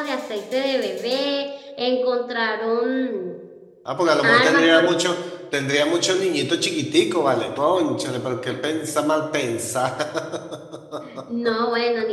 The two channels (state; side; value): identical; both; correlation 1.00